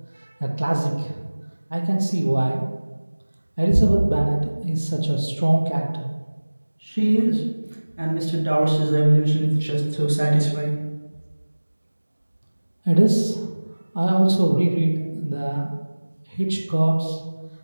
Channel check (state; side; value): inverted; both; correlation -1.00